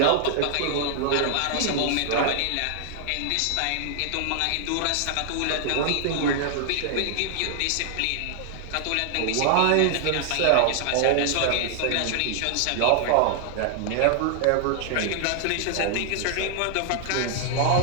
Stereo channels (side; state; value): both; different; correlation 0.00